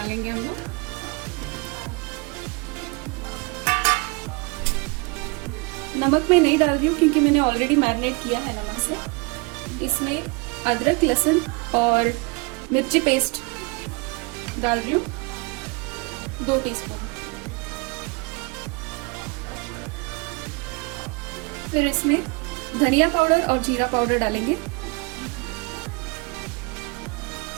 हम लोग। नमक मैं नहीं डाल रही हूँ क्योंकि मैंने ऑलरेडी मैरिनेट किया है नमक से। इसमें अदरक, लहसुन और मिर्ची पेस्ट डाल रही हूँ 2 टीस्पून। फिर इसमें धनिया पाउडर और जीरा पाउडर डालेंगे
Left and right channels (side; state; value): left; quieter; 28.9 dB